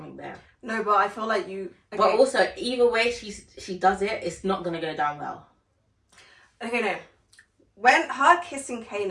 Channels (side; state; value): both; identical; correlation 1.00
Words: there. No, but I feel like you... Okay. But also, either way she does it, it's not going to go down well. Okay, no. When her kissing